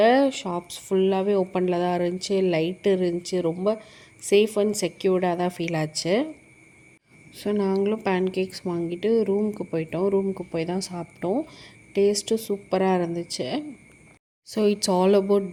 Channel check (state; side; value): identical; both; correlation 1.00